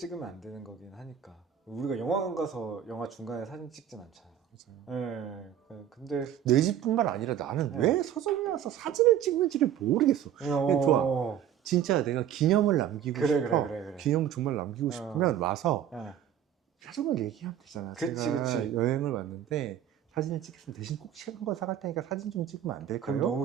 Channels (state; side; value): quieter; left; 9.8 dB